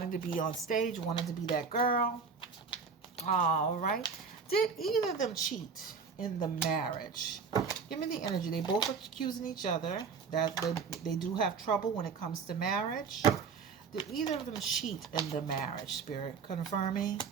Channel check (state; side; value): quieter; left; 5.5 dB